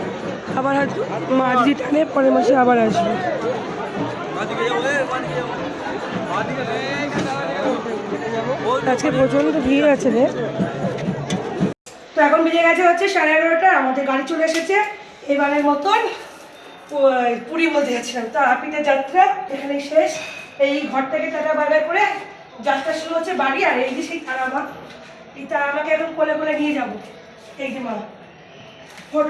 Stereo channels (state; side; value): identical; both; correlation 1.00